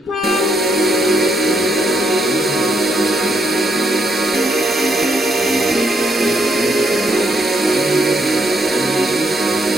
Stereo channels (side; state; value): both; normal; correlation 0.75